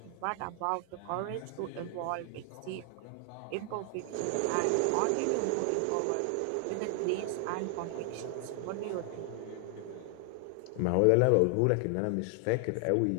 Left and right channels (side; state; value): both; different; correlation 0.00